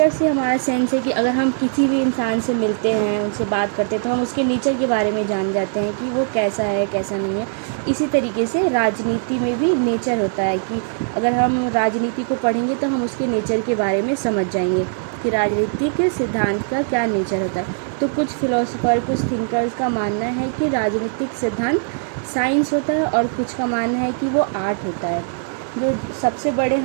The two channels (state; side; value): silent; left; 65 dB below the other